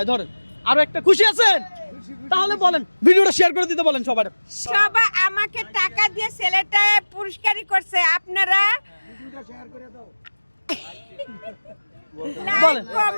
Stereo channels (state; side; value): inverted; both; correlation -1.00